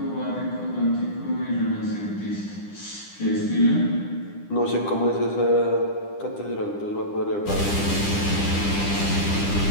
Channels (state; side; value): late; right; 10 ms